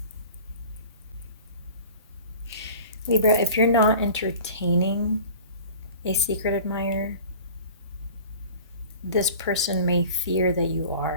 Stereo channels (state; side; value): inverted; both; correlation -0.42